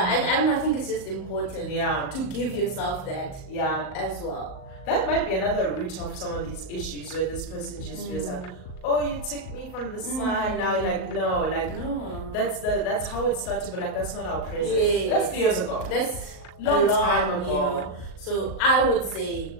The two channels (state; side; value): late; right; 38 ms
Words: don't know, I think it's just important to give yourself that as well. That might be another root of some of these issues where this person just feels like, oh, you took me from the side. Now, no. That's how it started, but like that's not our present. That's 3 years ago. That's long time ago. So I would say,